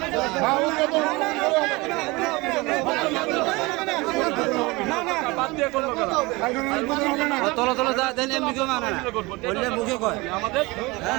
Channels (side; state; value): left; quieter; 23.5 dB